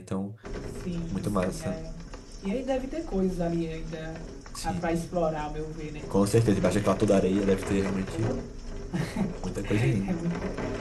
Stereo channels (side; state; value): both; identical; correlation 1.00